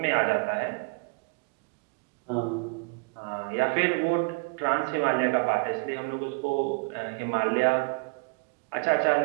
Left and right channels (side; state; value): left; quieter; 33.0 dB